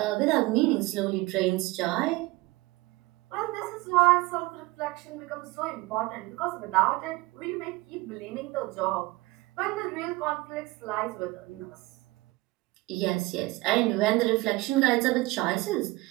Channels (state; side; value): quieter; left; 21.2 dB